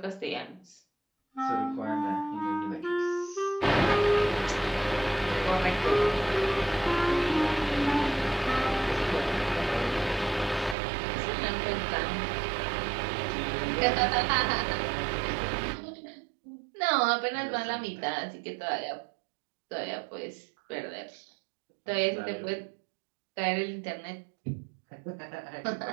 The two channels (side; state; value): left; drops out; at 10.8 s